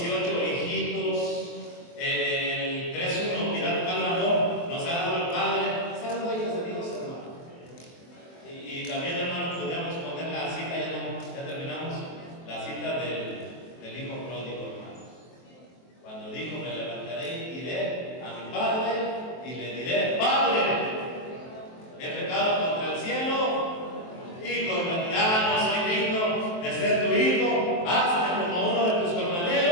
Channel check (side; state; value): right; late; 23 ms